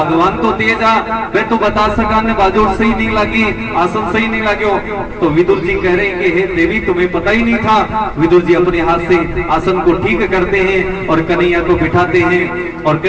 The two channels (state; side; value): identical; both; correlation 1.00